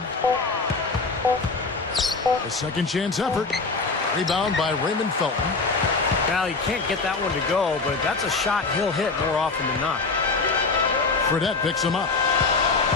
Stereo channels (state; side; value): quieter; right; 4.1 dB